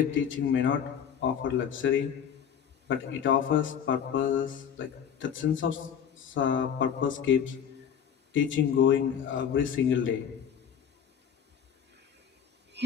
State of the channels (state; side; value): quieter; right; 8.3 dB